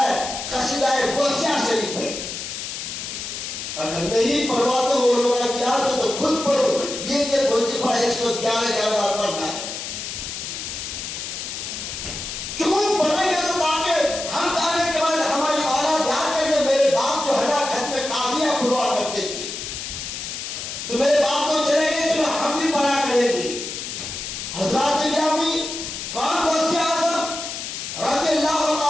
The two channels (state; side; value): noise; left; hiss, 6 dB below the sound